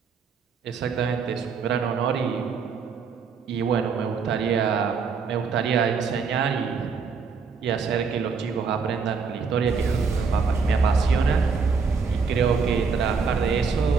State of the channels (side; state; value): left; quieter; 5.3 dB